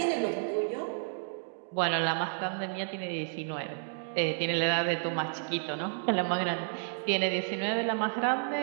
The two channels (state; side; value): silent; left; digital silence